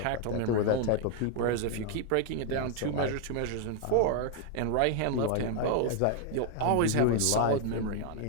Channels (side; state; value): both; different; correlation 0.00